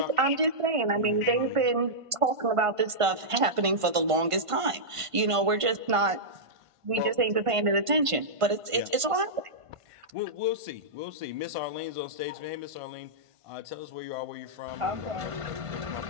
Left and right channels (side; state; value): left; late; 1.5 ms